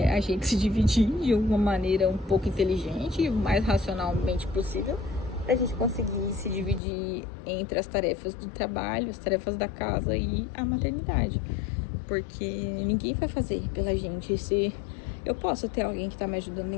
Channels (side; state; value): right; drops out; at 6.8 s